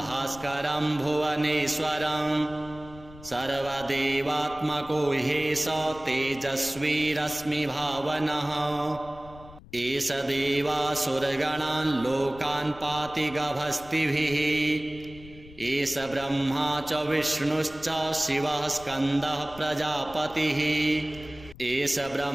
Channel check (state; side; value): noise; left; rumble, 19 dB below the sound